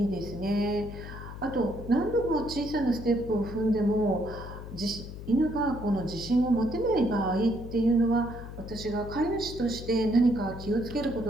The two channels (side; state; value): left; noise; hum, 11 dB below the sound